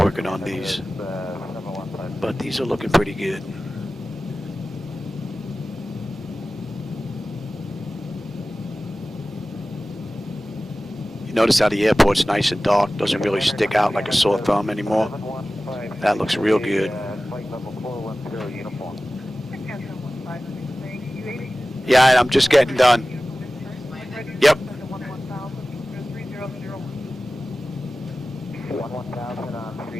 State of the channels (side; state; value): both; normal; correlation 0.96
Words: on these. But these are looking pretty good. You notice how the airport's nice and dark, doesn't really stick out like a sore thumb anymore. That looks real good. Yeah, I'm just getting done. Yep. 1,000 on